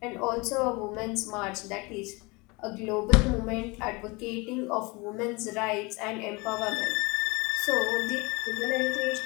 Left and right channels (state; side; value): quieter; right; 26.0 dB